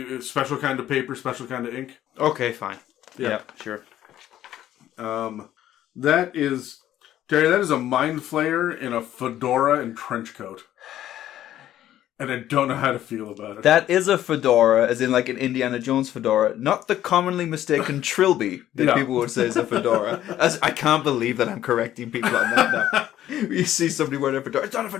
Special kind of paper, special kind of ink. Okay, fine. Yeah, sure. That is, Terry, that is a mind flayer in a fedora and trench coat. And I don't know how to feel about it. That is a fedora, as in like an Indiana Jones fedora, not the commonly mistaken trilby that people would say is a fedora. I can't believe that I'm correcting people on that now. You see somebody wearing a fedora, it's not a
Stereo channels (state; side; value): quieter; right; 12.4 dB